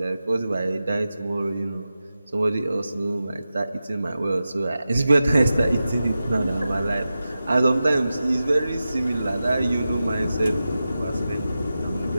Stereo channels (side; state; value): both; inverted; correlation -0.93